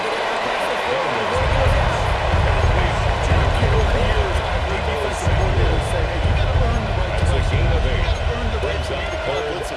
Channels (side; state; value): both; identical; correlation 1.00